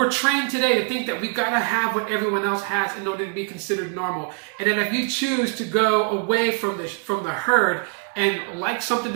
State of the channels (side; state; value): left; quieter; 38.2 dB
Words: trained today to think that we gotta have what everyone else has in order to be considered normal. And then if you choose to go away from the herd and like something